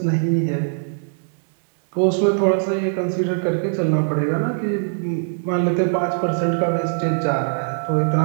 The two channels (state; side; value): silent; left; digital silence